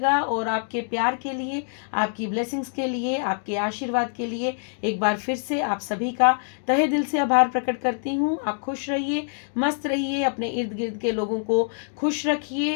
और आपके प्यार के लिए, आपकी ब्लेसिंग्स के लिए, आपके आशीर्वाद के लिए एक बार फिर से आप सभी का तहे दिल से आभार प्रकट करती हूँ। आप खुश रहिए, मस्त रहिए, अपने इर्द गिर्द के लोगों को खुश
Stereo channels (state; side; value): silent; right; digital silence